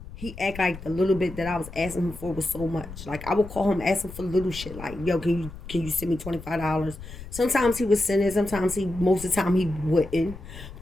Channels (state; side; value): noise; left; rumble, 13 dB below the sound